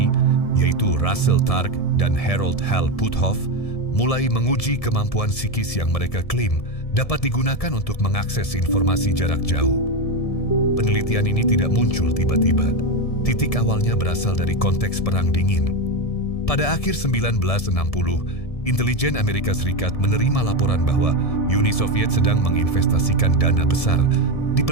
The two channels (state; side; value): late; right; 1.7 ms